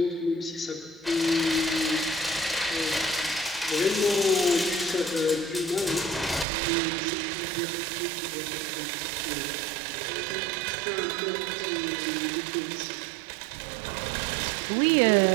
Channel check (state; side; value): drops out; left; at 6.5 s